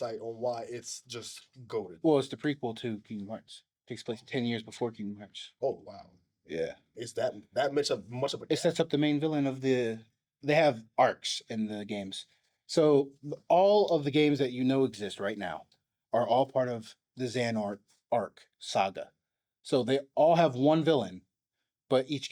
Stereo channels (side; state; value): both; identical; correlation 1.00